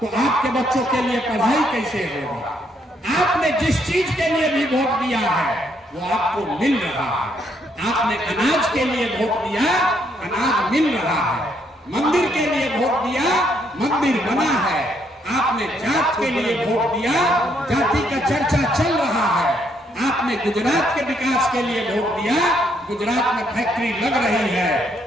आपके बच्चों के लिए पढ़ाई कैसे होगी? आपने जिस चीज के लिए भी वोट दिया है वो आपको मिल रहा है। आपने अनाज के लिए वोट दिया, अनाज मिल रहा है। मंदिर के लिए वोट दिया, मंदिर बना है। आपने जात के लिए वोट दिया, जाति का चर्चा चल रहा है। आपने गुजरात के विकास के लिए वोट दिया, गुजरात में फैक्ट्री लग रही है।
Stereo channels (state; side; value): normal; both; correlation 0.72